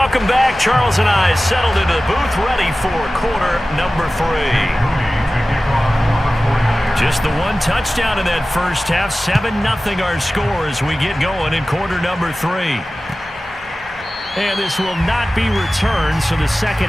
back. Charles and I settled into the booth, ready for quarter number 3. Just the 1 touchdown in that first half. 7-0 our score as we get going in quarter number 3. And this will not be returned, so the second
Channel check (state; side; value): normal; both; correlation 0.96